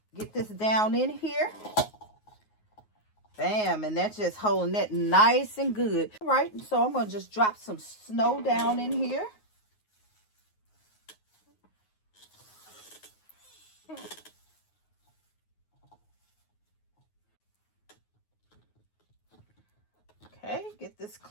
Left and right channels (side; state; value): right; late; 9.5 ms